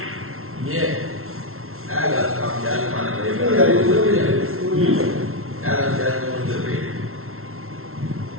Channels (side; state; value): left; late; 0.62 ms